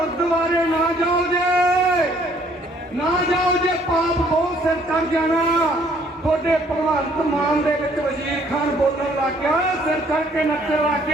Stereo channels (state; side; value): normal; both; correlation 0.62